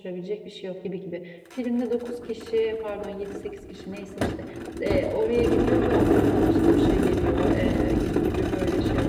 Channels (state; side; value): identical; both; correlation 1.00